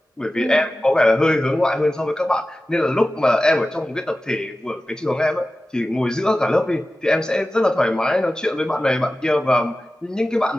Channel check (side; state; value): both; normal; correlation 0.95